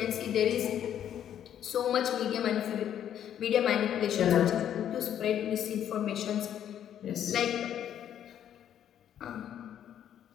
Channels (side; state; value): right; quieter; 10.1 dB